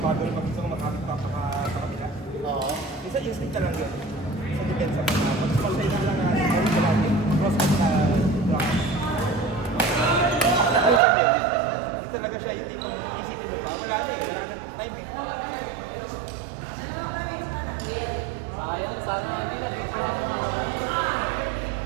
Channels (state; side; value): drops out; left; at 11.0 s